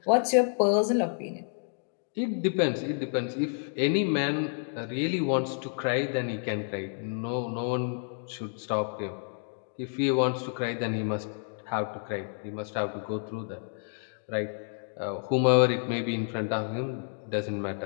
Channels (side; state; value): right; silent; 58 dB below the other